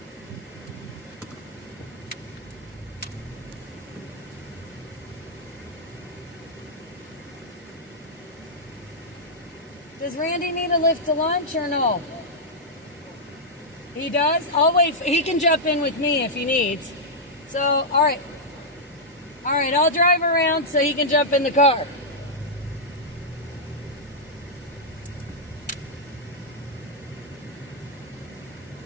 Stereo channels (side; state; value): both; normal; correlation -0.07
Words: Does Randy need a lift to lunch or no? He does? I'll wait. He can jump in with me if he needs. So, all right. All right, I'll drive around so he can jump in the car.